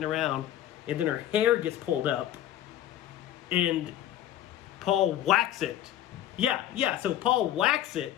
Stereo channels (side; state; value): right; quieter; 12.2 dB